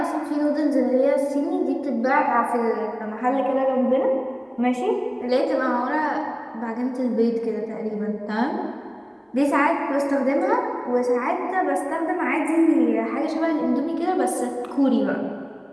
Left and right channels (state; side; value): identical; both; correlation 1.00